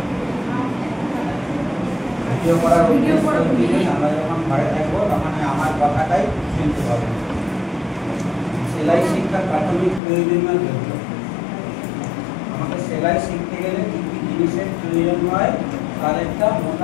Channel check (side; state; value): right; drops out; at 10.0 s